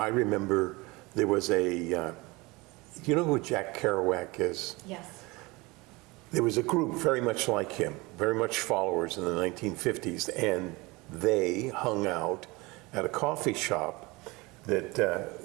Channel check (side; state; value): left; quieter; 23.7 dB